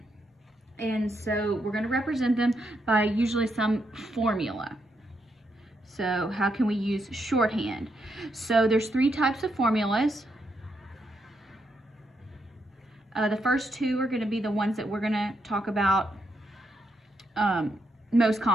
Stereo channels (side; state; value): both; normal; correlation 0.79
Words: And so we're going to represent them by usually some formula. So how can we use shorthand? So there's 3 types of formulas. The first 2 are going to be the ones that we're going to talk about most